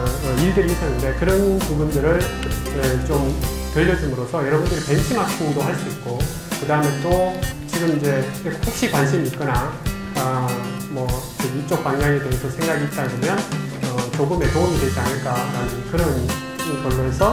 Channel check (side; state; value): both; identical; correlation 1.00